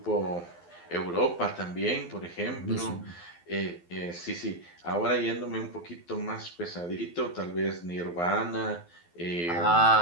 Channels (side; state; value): right; late; 12 ms